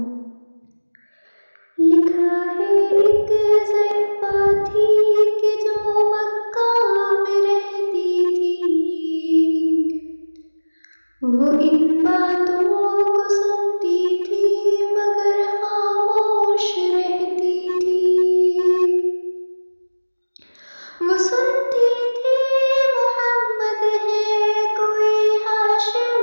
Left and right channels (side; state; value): both; inverted; correlation -1.00